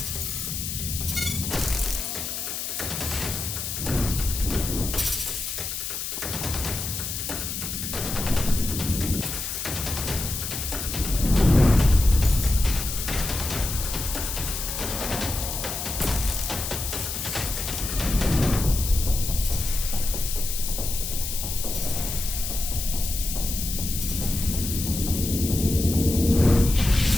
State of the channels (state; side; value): noise; left; hiss, 4 dB below the sound